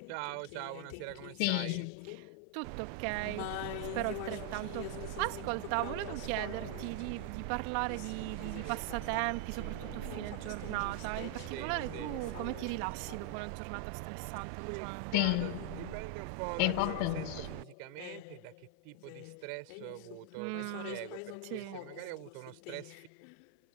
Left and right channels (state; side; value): different; both; correlation 0.00